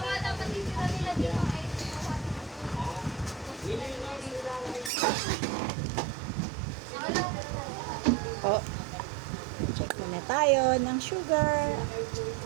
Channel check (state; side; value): drops out; left; at 4.9 s